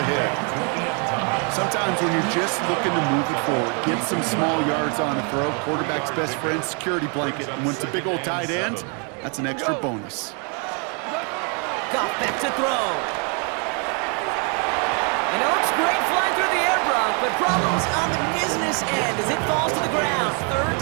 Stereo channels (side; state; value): left; quieter; 37.1 dB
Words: Sometimes when you're just looking to move it forward, get some small yards on a throw, quarterback's best friend, security blanket. And when it's a big old tight end, that's an extra bonus. Goff back to throw. And it looks great flying through the air, Brock, but problems on the business end as it falls to the ground. Third